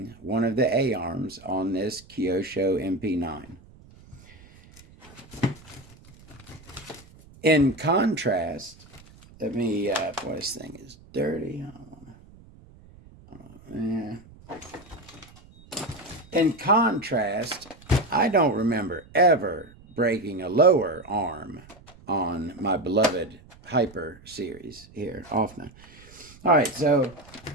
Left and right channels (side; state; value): right; noise; rumble, 23 dB below the sound